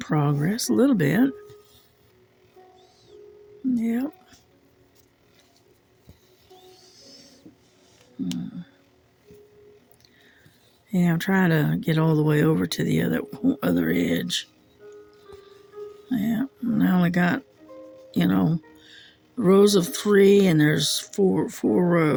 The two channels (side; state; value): both; identical; correlation 1.00